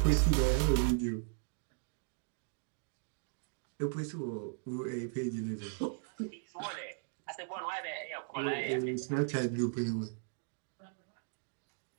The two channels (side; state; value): left; silent; digital silence